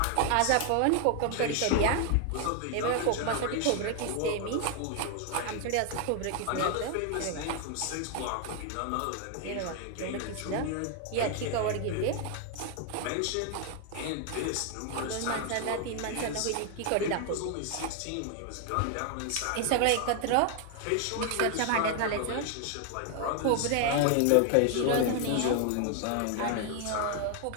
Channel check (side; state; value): both; different; correlation 0.00